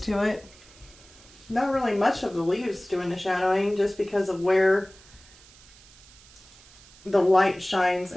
to it. Not really much of the leaves doing the shadowing, just because of where the light shines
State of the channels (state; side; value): noise; right; hiss, 24 dB below the sound